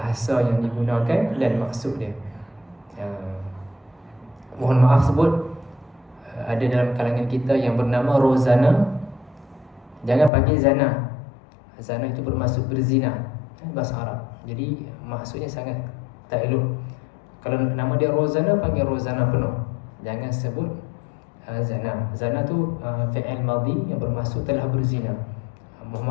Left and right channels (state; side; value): drops out; right; at 10.3 s